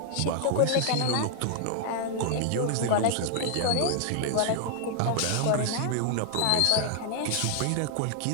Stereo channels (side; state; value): both; different; correlation 0.00